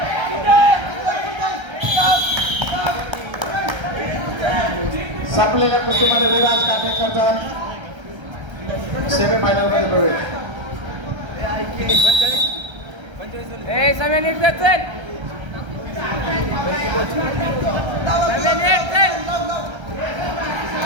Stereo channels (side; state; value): left; late; 1.3 ms